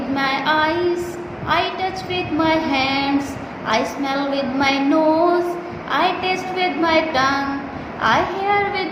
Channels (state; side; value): identical; both; correlation 1.00